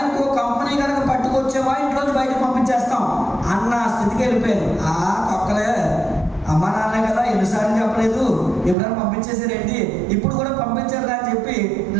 ఇంకో కంపెనీ కనుక పట్టుకొచ్చేవా ఇంట్లోంచి బయటకు పంపించేస్తాం అన్న స్థితికి వెళ్ళిపోయాను. తొక్కలే, అమ్మ నాన్న కదా ఎన్నిసార్లు చెప్పలేదు, ఎప్పుడైనా పంపించేసారేంటి, ఇప్పుడు కూడా పంపించారు అని చెప్పి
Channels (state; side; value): drops out; left; at 8.8 s